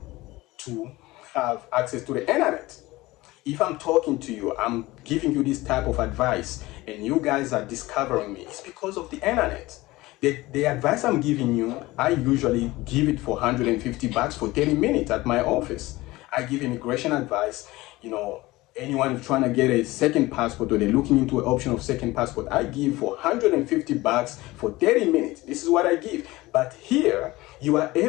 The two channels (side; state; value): right; quieter; 19.5 dB